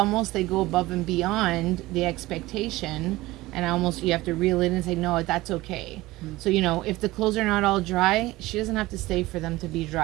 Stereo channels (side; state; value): left; quieter; 18.8 dB